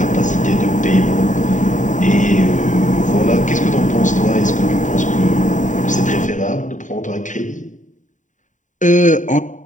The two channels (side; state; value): right; late; 0.36 ms